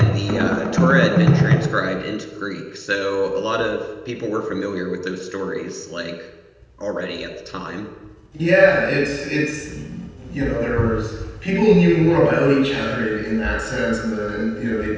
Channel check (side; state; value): both; identical; correlation 1.00